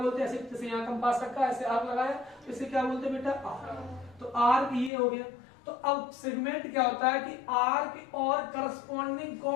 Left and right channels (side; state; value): right; drops out; at 4.9 s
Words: हैं? ऐसे जैसे यहाँ कंपास रखा, ऐसे आर्क लगाया, तो इसे क्या बोलते हैं बेटा? आर्क। तो आर्क ये हो गया। तो अब सेगमेंट क्या होता है कि आर्क और करस्पॉन्डिंग